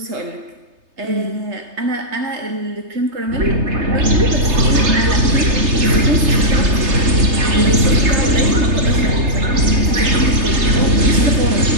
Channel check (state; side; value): late; left; 3.3 ms